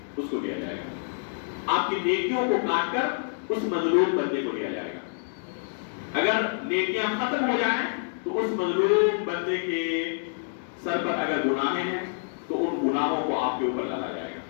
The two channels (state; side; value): silent; right; digital silence